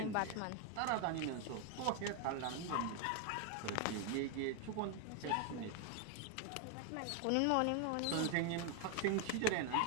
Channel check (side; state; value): both; different; correlation 0.00